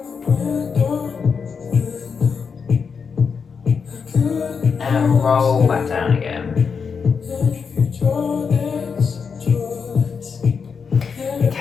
And roll back down again.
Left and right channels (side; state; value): right; quieter; 5.9 dB